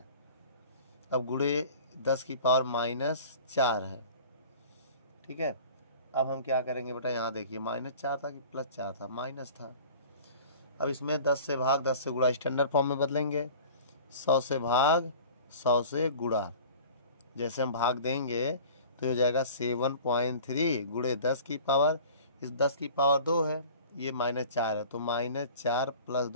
अब गुणे 10 की पावर -4 है, ठीक है। अब हम क्या करेंगे बेटा, यहाँ देखिए -4 था कि +4 था, माइनस था। अब इसमें 10 से भाग 10 से गुणा स्टैंडर्ड फॉर्म में बदलेंगे, 100 से भाग 100 से गुणा। जैसे हम भाग देंगे तो हो जाएगा 7.3 गुणे 10 की पावर, इस 10 की पावर 2 है, ये -4 है, तो -4 +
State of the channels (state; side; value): inverted; both; correlation -0.43